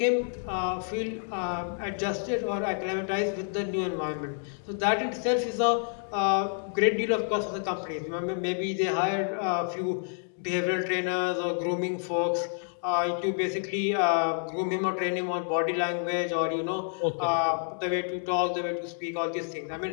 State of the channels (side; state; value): right; silent; digital silence